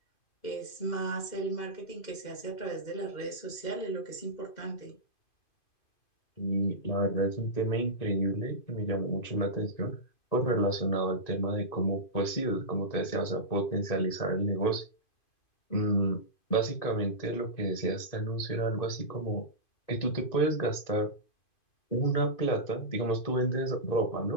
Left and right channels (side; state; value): right; late; 2.5 ms